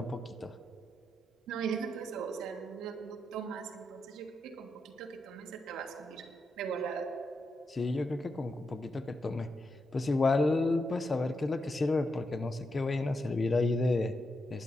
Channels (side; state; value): both; normal; correlation 0.85